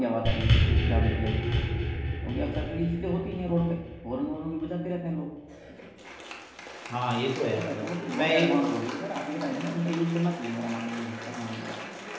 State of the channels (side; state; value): both; identical; correlation 1.00